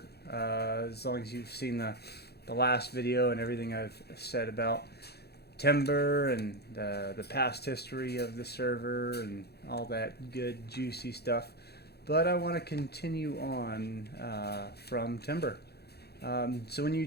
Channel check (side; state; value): right; late; 0.47 ms